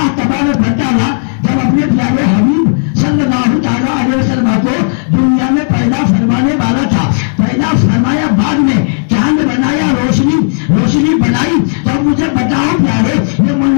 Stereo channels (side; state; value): right; silent; digital silence